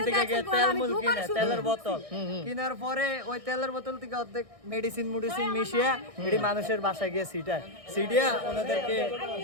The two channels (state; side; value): late; left; 1.6 ms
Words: থেকে গিয়ে দেখছেন, তেল আমি মুল দোকান কিনে শুরু তেলের বোতল কেনার পরে ওই তেলের বোতল থেকে অর্ধেক মেডিসিন মিশিয়ে এটি মানুষের বাসায় গিয়ে সিটিয়া ওনাদেরকে